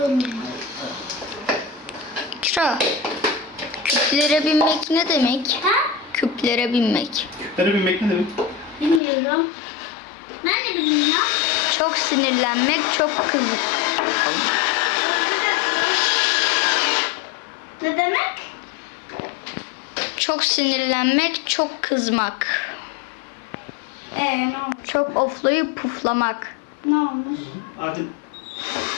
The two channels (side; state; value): right; drops out; at 9.0 s